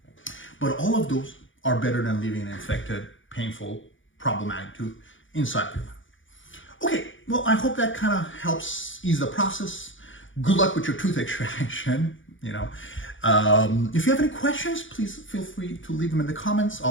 but all of those are better than leaving an infected, painful, problematic tooth inside your mouth. Okay, well, I hope that kind of helps ease the process. Good luck with your tooth extraction. If you have any questions, please feel free to leave them in the comments.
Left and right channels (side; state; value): right; late; 0.56 ms